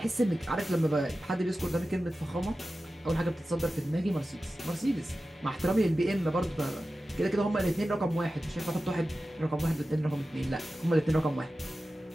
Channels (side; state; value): both; normal; correlation 0.94